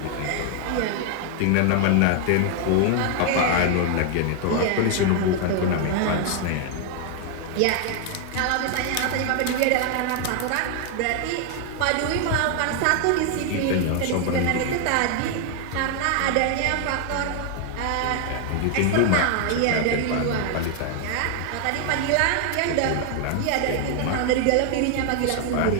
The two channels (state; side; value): different; both; correlation 0.00